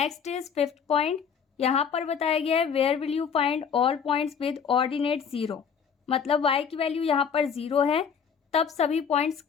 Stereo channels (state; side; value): quieter; right; 6.9 dB